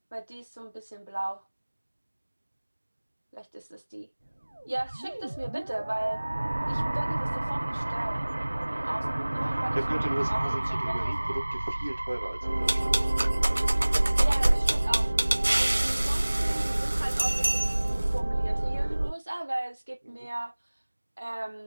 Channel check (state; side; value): inverted; both; correlation -1.00